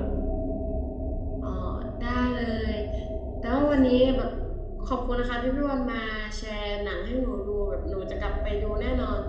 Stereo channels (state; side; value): identical; both; correlation 1.00